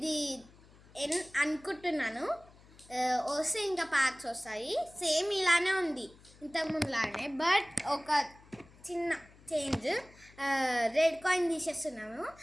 అనుకుంటున్నాను వస్తే ఇంకా ప్యాక్స్ వస్తాయి. సేమ్ ఇలానే ఉంది ఇంతకుముందులానే, బట్ ఒక చిన్న చేంజ్. Red coin తీసేస్తున్నాము.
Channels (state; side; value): noise; left; hum, 25 dB below the sound